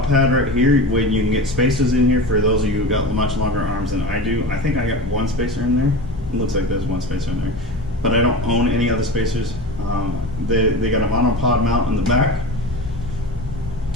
pad right here, when you can get spacers in here for those of you who got much longer arms than I do. I think I got one spacer in there. It looks like there's one spacer in there, but I don't own any other spacers. They got a monopod mount in the back,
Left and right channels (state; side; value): normal; both; correlation 0.29